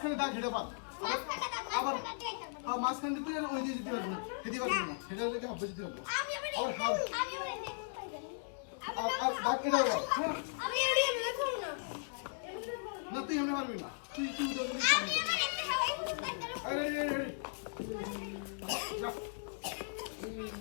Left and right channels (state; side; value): silent; right; digital silence